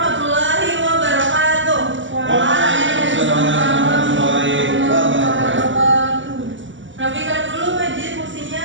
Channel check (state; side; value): late; left; 0.55 ms